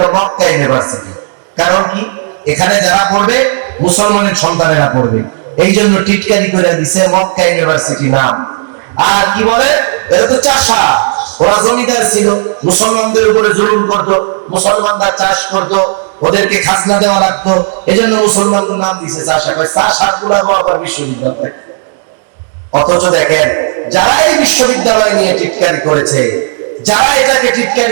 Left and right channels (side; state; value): left; silent; digital silence